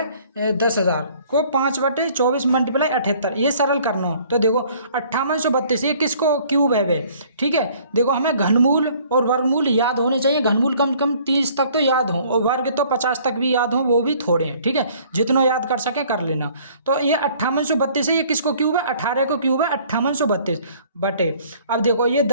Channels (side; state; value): both; inverted; correlation -0.56